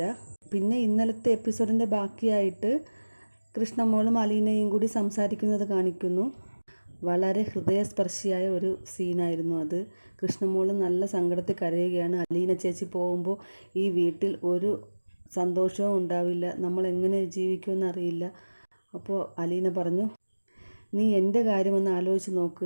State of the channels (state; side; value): inverted; both; correlation -1.00